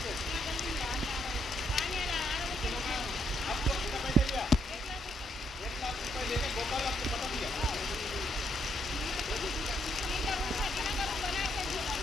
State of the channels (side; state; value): both; normal; correlation 0.75